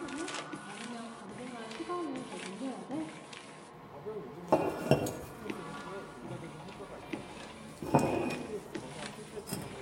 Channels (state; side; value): identical; both; correlation 1.00